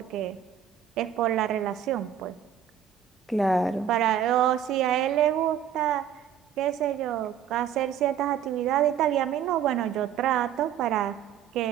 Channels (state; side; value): quieter; left; 9.3 dB